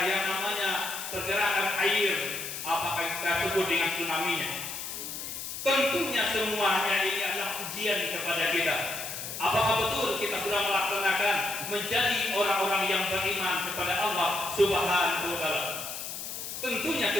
yang namanya pergerakan air, apakah kita sebut dengan tsunami-nya. Tentunya semuanya ini adalah ujian kepada kita. Apakah betul kita sudah melaksanakan menjadi orang-orang yang beriman kepada Allah Subhanahu wa taala? Tentunya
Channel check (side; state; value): left; noise; hiss, 7 dB below the sound